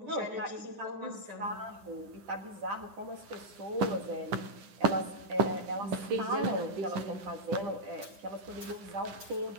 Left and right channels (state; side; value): late; left; 10 ms